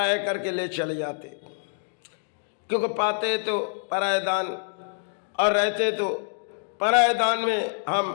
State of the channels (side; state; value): right; silent; digital silence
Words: करके ले चले जाते, क्योंकि पाते तो परायदान और रहते तो परायदान में